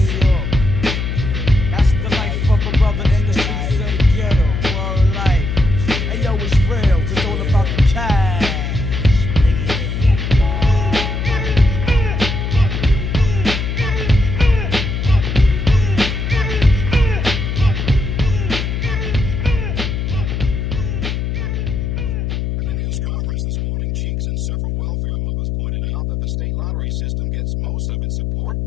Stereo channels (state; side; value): noise; left; hum, 2 dB below the sound